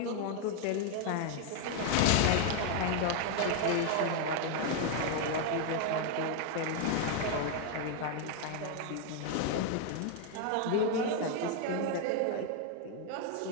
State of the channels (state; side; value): different; both; correlation 0.00